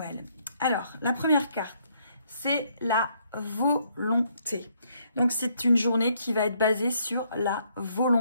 Alors la première carte, c'est la volonté. Donc c'est une journée qui va être basée sur la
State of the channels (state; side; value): inverted; both; correlation -0.70